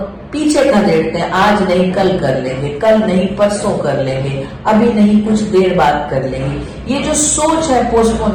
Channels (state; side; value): identical; both; correlation 1.00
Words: पीछे कर देते हैं। आज नहीं कल कर लेंगे, कल नहीं परसों कर लेंगे, अभी नहीं कुछ देर बाद कर लेंगे। ये जो सोच है